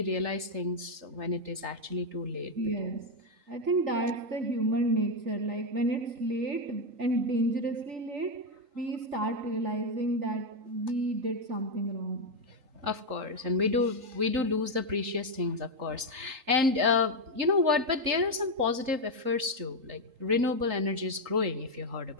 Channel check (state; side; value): late; left; 3.8 ms